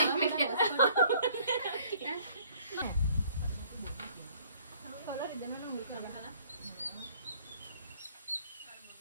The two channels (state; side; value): inverted; both; correlation -0.59